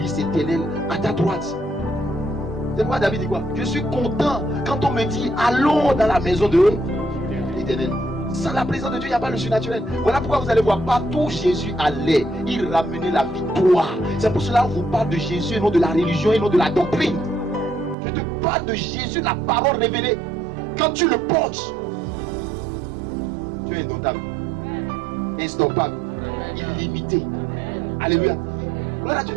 éternelles à ta droite. C'est pourquoi David dit quoi? Je suis content quand on me dit allons dans la maison de l'Éternel. Sans la présence de Dieu, il n'y a pas le surnaturel. Voilà pourquoi vous allez voir partout où Jésus allait, il ramenait la victoire. C'est pour cela que je vous parle de Jésus et non de la religion et non de la doctrine. Je te parle de Jésus, la parole révélée. Quand tu le portes, tu es indomptable, instoppable, illimité. Alléluia. Gloire à Dieu.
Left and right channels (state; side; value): drops out; left; at 17.9 s